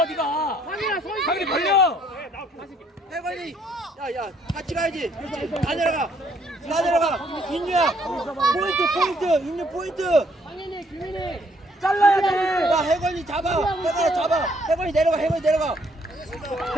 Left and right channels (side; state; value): both; normal; correlation 0.67